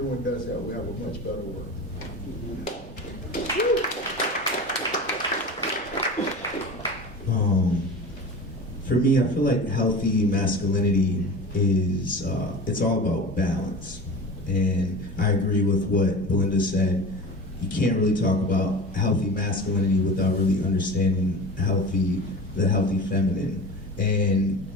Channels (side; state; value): both; normal; correlation 0.33